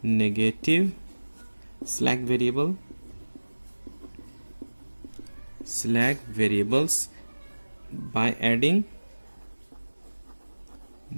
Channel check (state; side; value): inverted; both; correlation -1.00